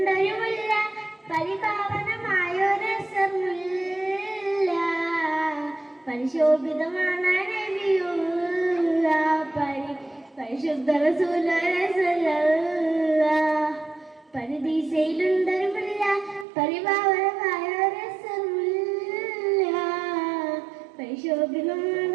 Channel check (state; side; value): drops out; left; at 16.4 s